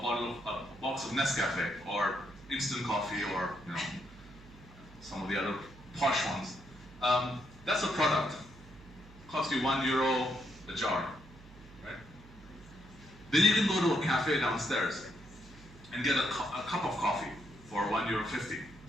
box of Nescafe or instant coffee or some of the other posh ones. That's a product. Costs you €1 a jar, right? Then you can go to a cafe downstairs and get a cup of coffee for €1.50,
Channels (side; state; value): right; noise; hum, 20 dB below the sound